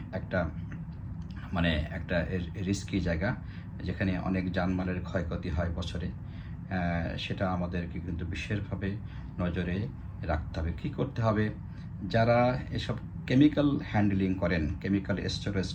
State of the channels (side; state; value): both; identical; correlation 1.00